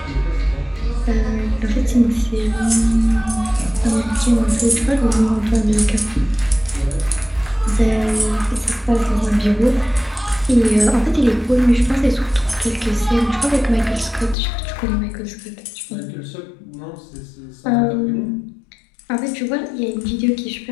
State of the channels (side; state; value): right; drops out; at 14.4 s